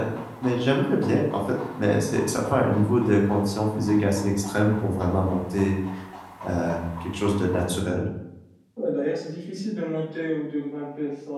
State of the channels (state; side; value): identical; both; correlation 1.00